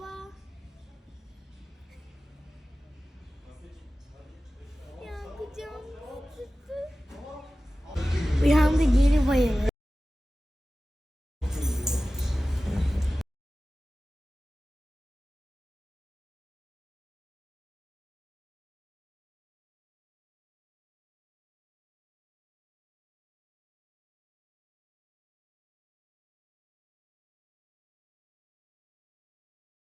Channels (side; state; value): both; normal; correlation 0.96